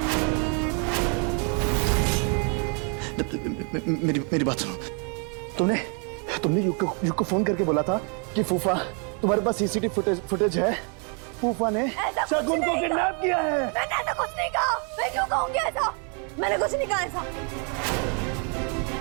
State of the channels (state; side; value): quieter; left; 38.6 dB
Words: मेरी बात सुनो। तुमने युग को फोन करके बोला था कि फूफा तुम्हारे पास सीसीटीवी फुटेज है। फूफा ने शगुन को किडनैप किया है। मैंने ऐसा कुछ नहीं कहा। मैं क्यों कहूंगी ऐसा? मैंने कुछ नहीं कहा ऐसा।